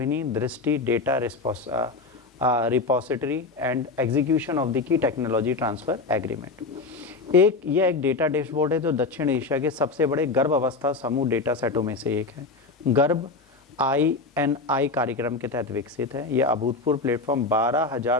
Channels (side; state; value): right; quieter; 3.8 dB